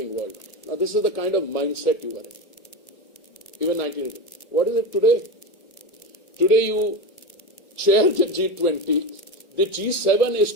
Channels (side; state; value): right; late; 1.5 ms